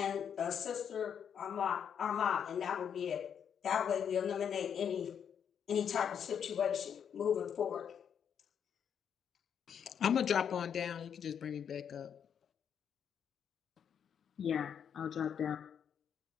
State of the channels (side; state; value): right; quieter; 8.0 dB